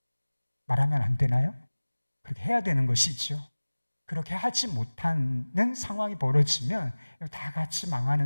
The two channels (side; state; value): both; inverted; correlation -1.00